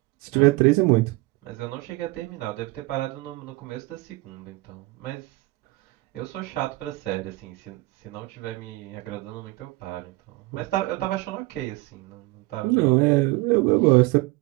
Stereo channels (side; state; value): left; quieter; 22.0 dB